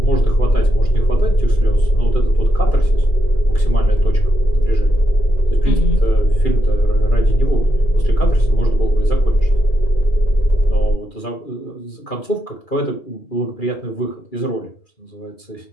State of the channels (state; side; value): late; right; 2.4 ms